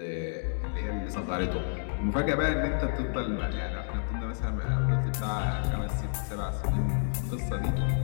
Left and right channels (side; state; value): right; silent; digital silence